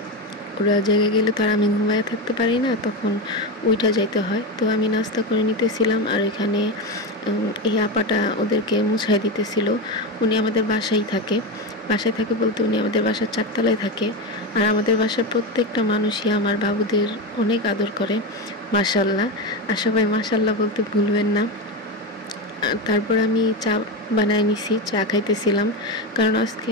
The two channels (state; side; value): normal; both; correlation 0.16